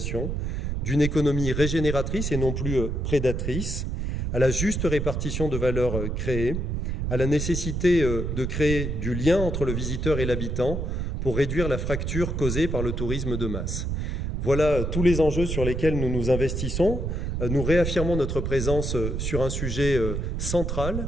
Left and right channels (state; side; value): noise; right; rumble, 2 dB below the sound